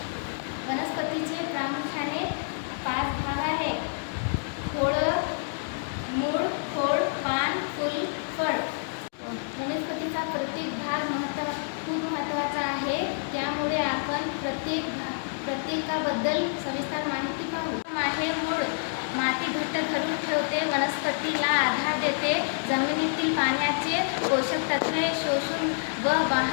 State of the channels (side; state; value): right; silent; digital silence